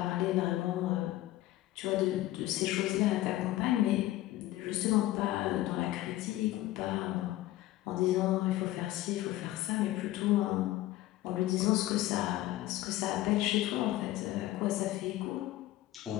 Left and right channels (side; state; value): right; quieter; 15.7 dB